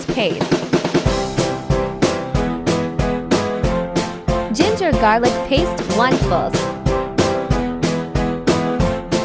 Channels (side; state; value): both; identical; correlation 1.00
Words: paste, ginger garlic paste 1 full,